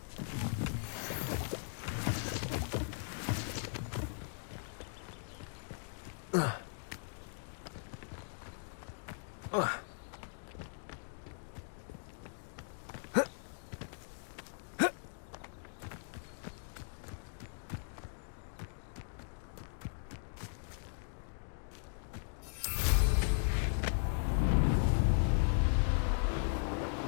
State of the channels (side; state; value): right; silent; digital silence